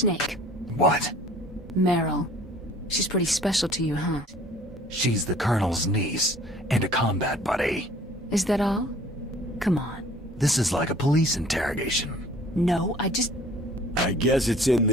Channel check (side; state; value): both; normal; correlation 0.51